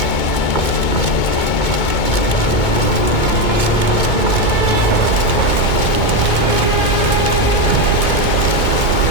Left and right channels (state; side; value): late; right; 2.2 ms